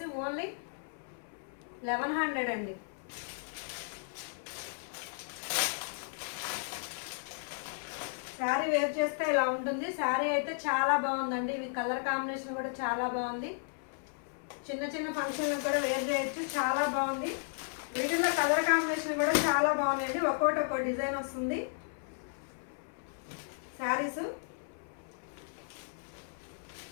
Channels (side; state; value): right; silent; 55 dB below the other